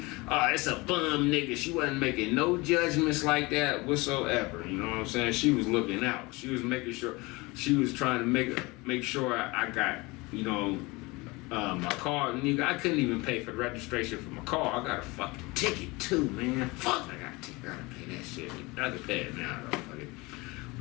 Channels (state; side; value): quieter; right; 24.1 dB